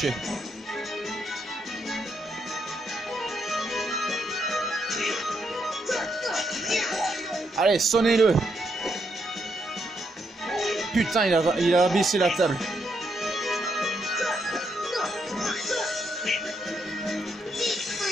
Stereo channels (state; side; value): normal; both; correlation 0.78